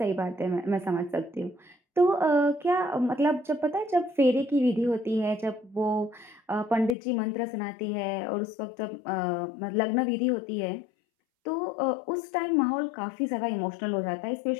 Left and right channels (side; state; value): right; drops out; at 7.0 s